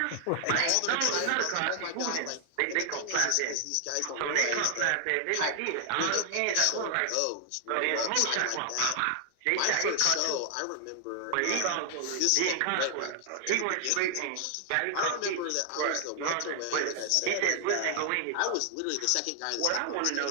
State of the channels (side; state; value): both; different; correlation 0.00